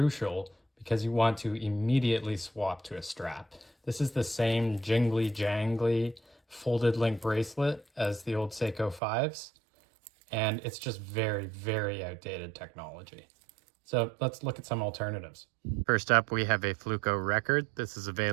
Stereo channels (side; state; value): left; drops out; at 9.0 s